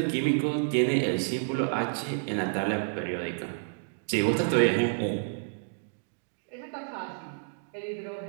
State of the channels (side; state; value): left; silent; digital silence